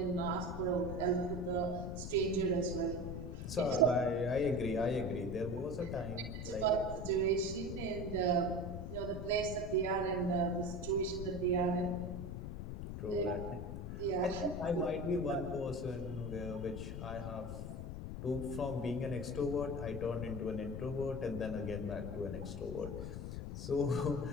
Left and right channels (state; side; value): noise; left; rumble, 6 dB below the sound